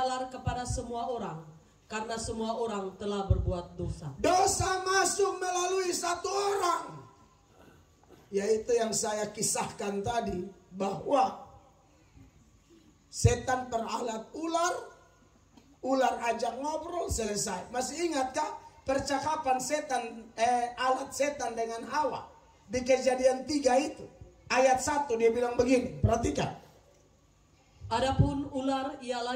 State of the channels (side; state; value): both; identical; correlation 1.00